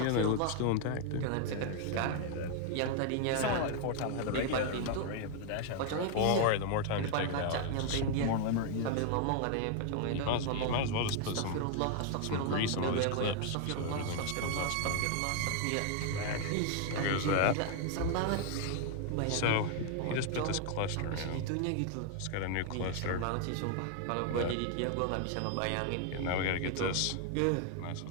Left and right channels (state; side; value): different; both; correlation 0.00